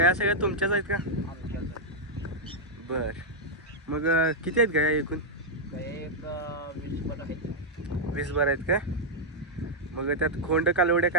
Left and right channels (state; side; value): normal; both; correlation -0.04